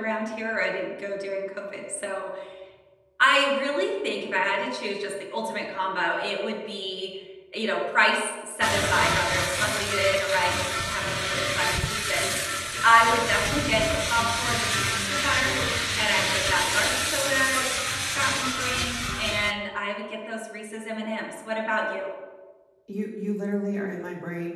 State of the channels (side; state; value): both; identical; correlation 1.00